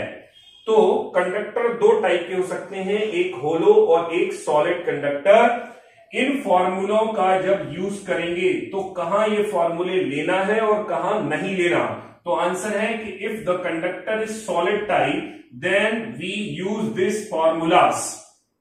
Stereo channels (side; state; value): both; identical; correlation 1.00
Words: तो कंडक्टर 2 टाइप के हो सकते हैं, एक होलो और एक सॉलिड कंडक्टर। इन फॉर्मूलों का जब यूज करेंगे तो कहां ये फॉर्मूले लेना है और कहां नहीं लेना, तो आंसर है कि if the conductor is solid type then we use this formulas.